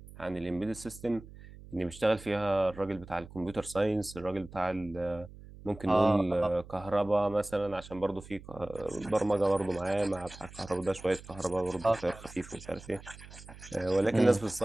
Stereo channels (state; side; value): noise; right; hum, 17 dB below the sound